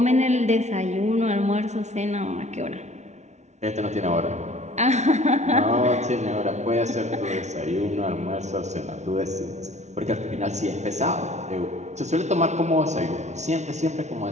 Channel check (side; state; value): left; late; 0.33 ms